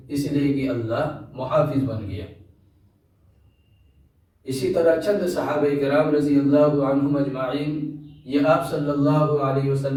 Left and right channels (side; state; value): both; identical; correlation 1.00